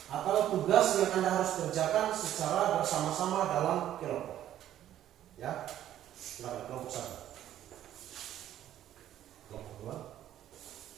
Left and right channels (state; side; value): quieter; left; 11.9 dB